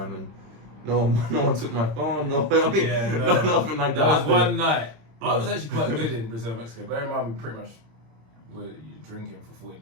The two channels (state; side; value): late; left; 26 ms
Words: and no one took my phone. Nothing like that. That was one night. I was actually quite good in Brazil, Mexico. Bear in mind, we pretty much were drinking for 14